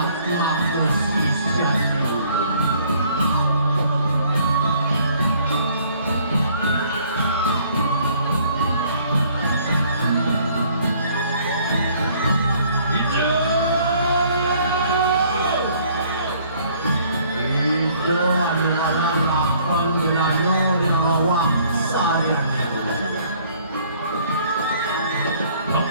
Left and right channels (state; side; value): inverted; both; correlation -0.59